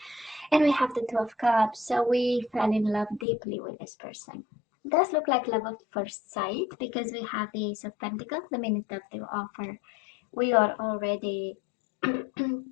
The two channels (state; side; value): drops out; right; at 3.2 s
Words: And we have the Two of Cups, so we fell in love deeply with this person. It does look like love at first sight because we have the Ace of Pentacles the minute of the offer we are already